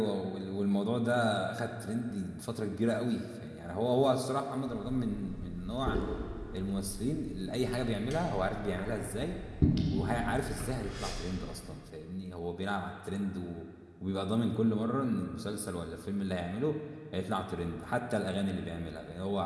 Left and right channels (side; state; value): both; identical; correlation 1.00